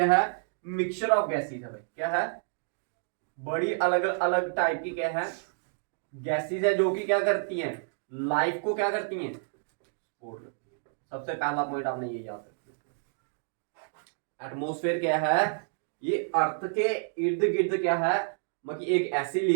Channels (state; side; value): silent; left; digital silence